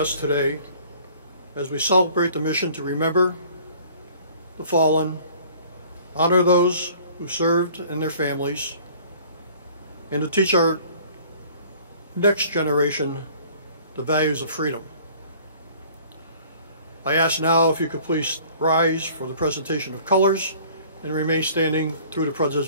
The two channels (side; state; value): both; inverted; correlation -0.52